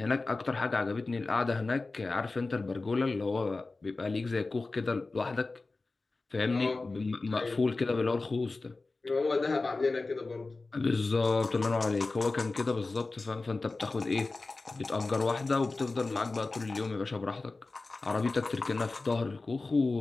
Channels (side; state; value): right; quieter; 3.5 dB